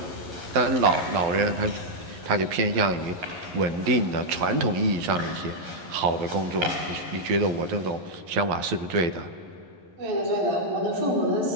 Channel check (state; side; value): late; left; 11 ms